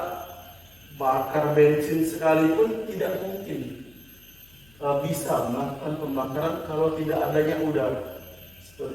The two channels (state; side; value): noise; left; hum, 27 dB below the sound